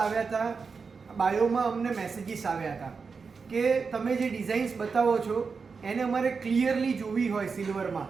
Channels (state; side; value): quieter; left; 5.1 dB